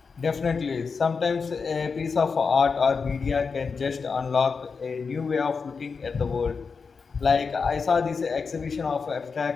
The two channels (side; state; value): right; quieter; 5.2 dB